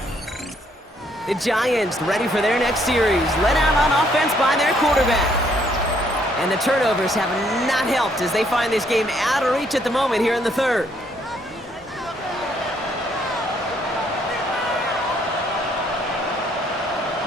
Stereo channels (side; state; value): both; normal; correlation 0.68